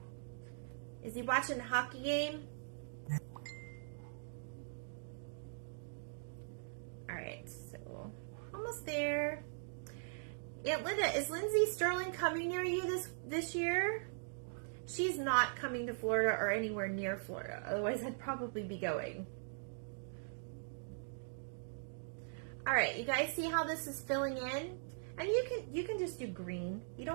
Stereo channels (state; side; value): silent; left; digital silence